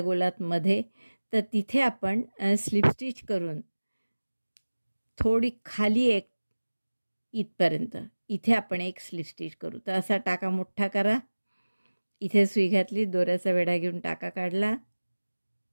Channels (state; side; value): inverted; both; correlation -1.00